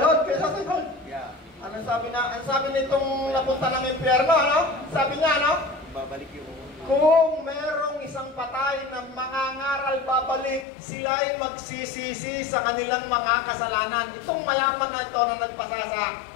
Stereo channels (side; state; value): right; drops out; at 10.7 s